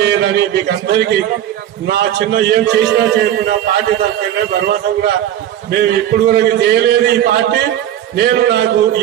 మీకు అందరికీ నా చిన్న ఏం చేసినా చేయకుండా పార్టీ తరఫున భరోసా కూడా మేము ఇప్పుడు వరకు చేయలేదు ఈ పార్టీ. నాకు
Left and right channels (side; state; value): left; quieter; 11.4 dB